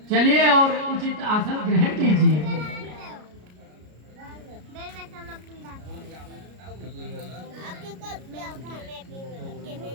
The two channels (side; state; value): left; late; 33 ms